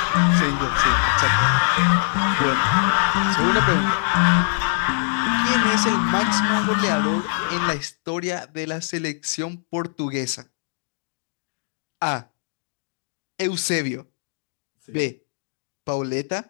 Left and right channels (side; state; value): right; silent; digital silence